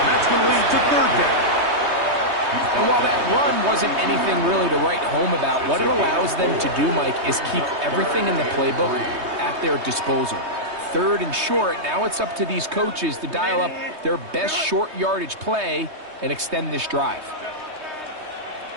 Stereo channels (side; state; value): left; late; 3.2 ms